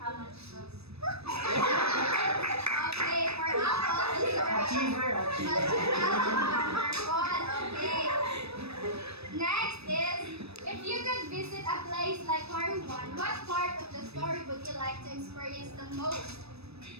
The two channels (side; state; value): left; late; 0.78 ms